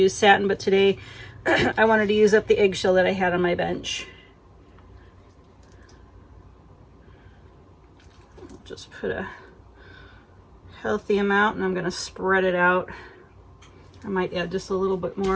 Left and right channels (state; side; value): identical; both; correlation 1.00